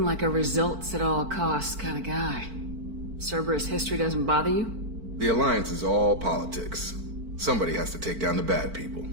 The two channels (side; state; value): left; late; 4.5 ms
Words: like a results at all costs kind of guy. Cerberus history doesn't bother you? The Alliance is all politics. Somebody has to take down the bad people.